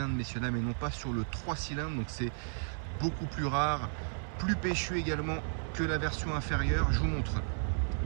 messieurs dames, et non pas sur le 3 cylindres. Donc c'est beaucoup plus rare, plus péchu également que la version inférieure. Je vous montre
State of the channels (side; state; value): left; silent; digital silence